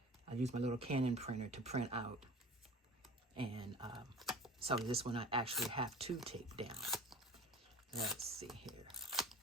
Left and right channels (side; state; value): both; normal; correlation 0.41